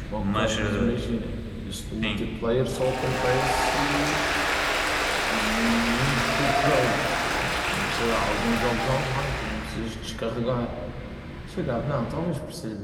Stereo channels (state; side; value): identical; both; correlation 1.00